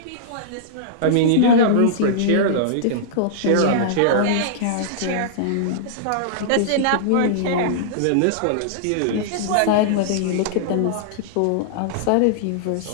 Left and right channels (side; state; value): both; different; correlation -0.02